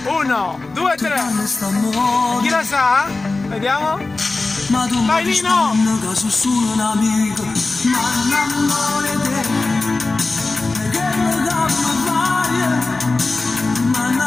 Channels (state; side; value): quieter; right; 3.4 dB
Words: 1, 2, 3. Chi la sa? Vediamo. Ma tu vai Nino! Che sono solo un amico. Ma non amore te. E che mi dà una ma non